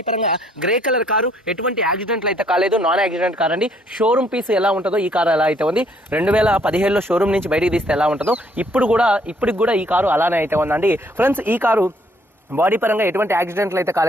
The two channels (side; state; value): both; normal; correlation 0.66